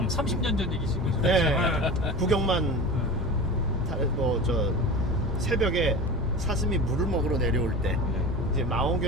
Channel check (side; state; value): both; normal; correlation 0.31